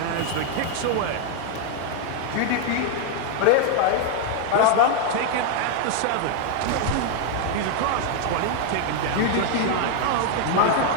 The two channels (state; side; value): different; both; correlation 0.00